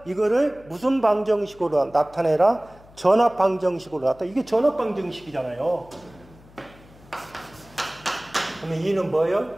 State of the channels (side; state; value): left; noise; hum, 24 dB below the sound